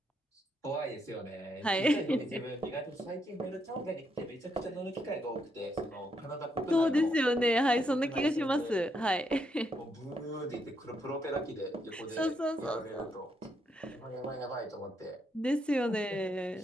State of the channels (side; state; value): both; normal; correlation 0.77